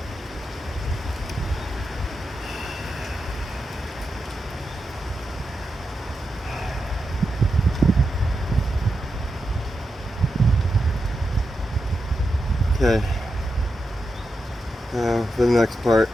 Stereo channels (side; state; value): both; normal; correlation 0.88